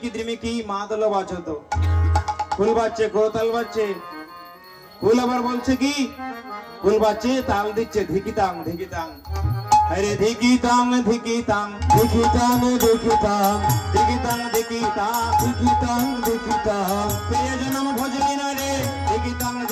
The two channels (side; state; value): both; identical; correlation 1.00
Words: দ্রিমিকি মাদল বাজত, ফুল বাজছে, করতাল বাজছে। ফুল আবার বলছে কি, ফুল বাজছে, তাল দিচ্ছে ধিকিতাং ধিকিতাং, আরে ধিকিতাং ধিকিতাং, দেখিতাম দেখিতাম ধিকিতাং ধিকিতাং, দেখিতাম দেখিতাম, প্রিয় জনম ভজলি না রে, ধিকিতাং